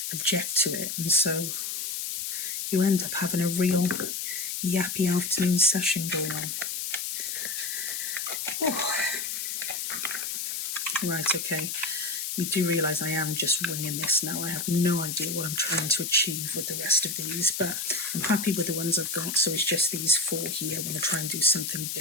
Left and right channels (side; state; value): left; noise; hiss, 3 dB below the sound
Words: object to it, and so you end up having a real yappy afternoon session going on. Oh. Right, okay. You do realise I am just winging this now. I have no idea what I'm trying to achieve with the rest of these, but I'm happy with the ones I've got, so it's just these 4 here I want to try and do something